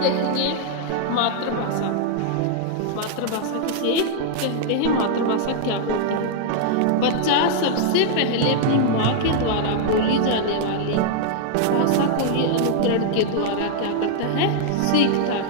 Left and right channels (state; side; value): different; both; correlation -0.01